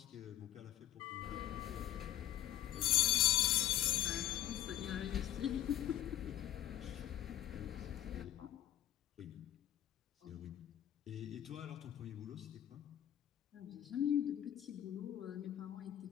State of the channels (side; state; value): right; quieter; 12.1 dB